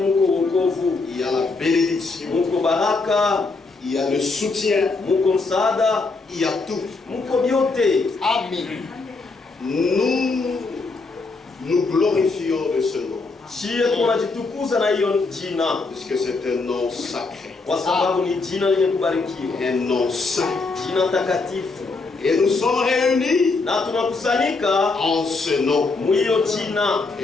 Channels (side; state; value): right; quieter; 3.8 dB